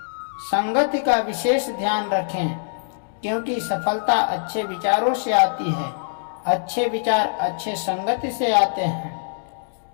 संगति का विशेष ध्यान रखें, क्योंकि सफलता अच्छे विचारों से आती है। अच्छे विचार अच्छे संगति से आते हैं।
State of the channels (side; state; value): right; silent; digital silence